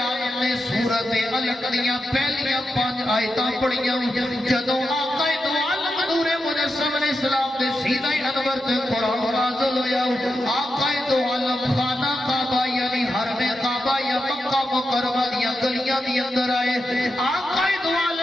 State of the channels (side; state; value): both; normal; correlation 0.87